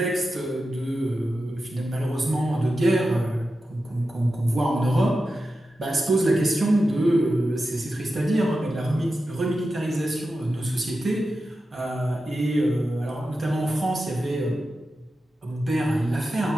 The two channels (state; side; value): normal; both; correlation 0.91